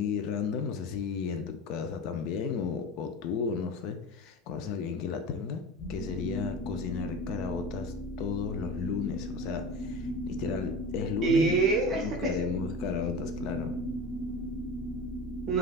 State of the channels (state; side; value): normal; both; correlation 0.31